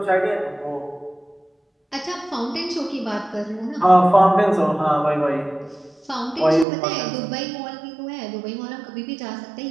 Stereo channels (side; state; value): left; drops out; at 6.7 s